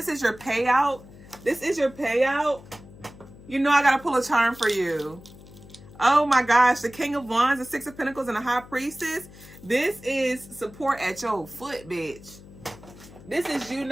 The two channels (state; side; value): noise; left; hum, 20 dB below the sound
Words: is your payout. This is your payout. You know I got to pull a charm for you. Oh my gosh. The King of Wands, the Six of Pentacles, and the High Priestess. This is support at your foot, bitch. This is you